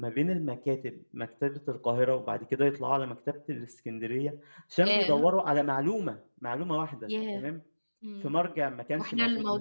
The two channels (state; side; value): inverted; both; correlation -1.00